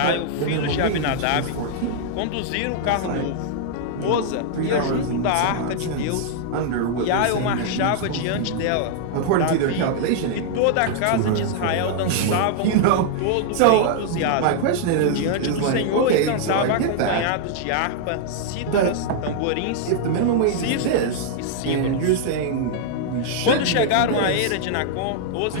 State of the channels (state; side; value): different; both; correlation -0.01